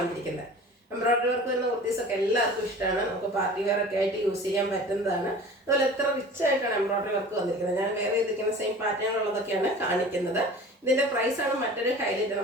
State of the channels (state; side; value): normal; both; correlation 0.41